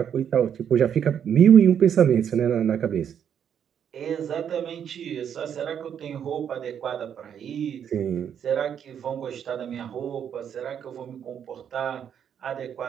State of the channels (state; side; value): quieter; left; 8.6 dB